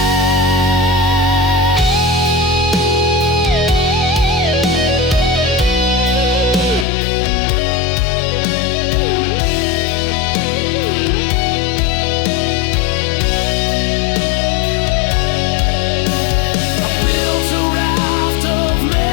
I built a raft of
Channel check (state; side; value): drops out; right; at 6.9 s